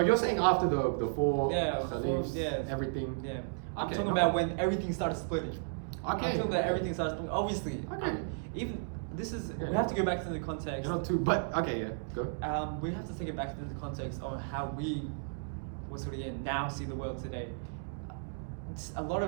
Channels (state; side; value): silent; left; digital silence